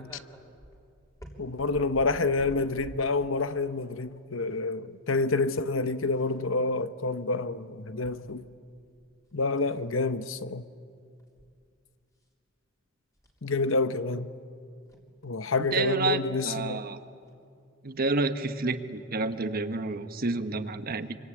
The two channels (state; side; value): normal; both; correlation -0.10